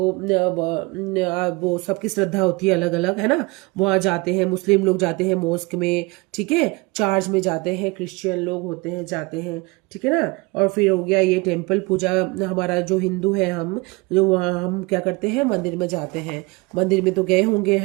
वो सबकी श्रद्धा होती है अलग अलग, है ना। वहाँ जाते हैं, मुस्लिम लोग जाते हैं मॉस्क में, ठीक है, चर्च में जाते हैं, क्रिश्चियन लोग होते हैं जाते हैं, ठीक है ना। और फिर हो गया ये टेम्पल पूजा, हमारा जो हिंदू है हम, जो वहाँ हम क्या करते हैं, मंदिर में जाते हैं। मंदिर में तो गए होंगे,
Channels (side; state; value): left; quieter; 25.4 dB